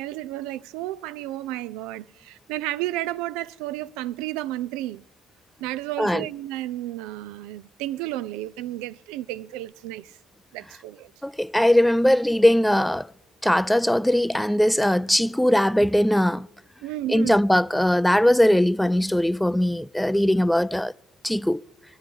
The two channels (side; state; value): both; normal; correlation 0.94